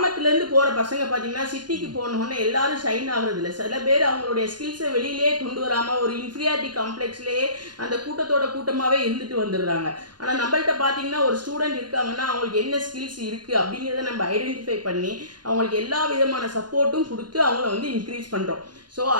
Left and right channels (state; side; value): late; left; 0.71 ms